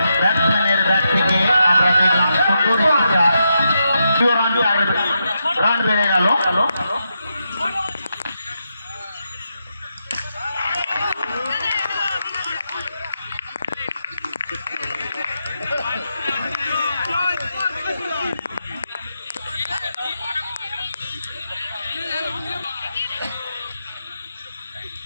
ব্যাট থেকে আমরা দেখলাম সুন্দর একটি চার, রান বেড়ে গেল।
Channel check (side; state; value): both; inverted; correlation -0.84